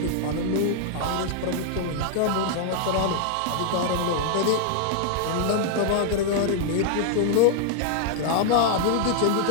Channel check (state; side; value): different; both; correlation 0.00